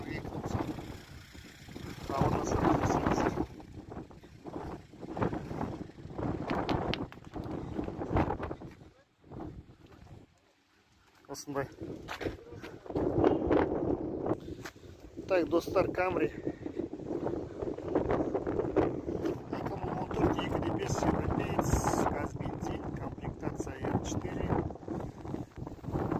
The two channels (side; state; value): both; identical; correlation 1.00